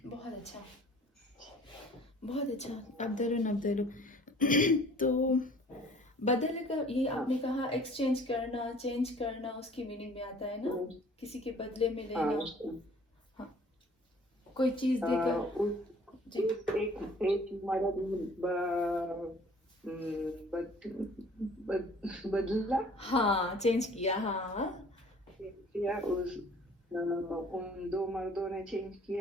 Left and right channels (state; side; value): normal; both; correlation 0.52